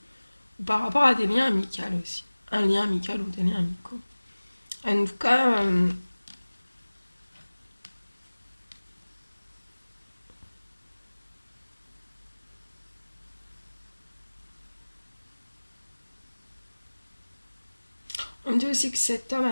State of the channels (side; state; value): both; inverted; correlation -1.00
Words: ou par rapport à des liens amicaux aussi. Un lien amical ou des liens amicaux. En tout cas, on dit aussi que cet homme